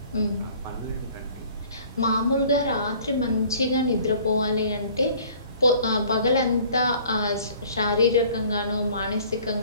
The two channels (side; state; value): both; inverted; correlation -0.52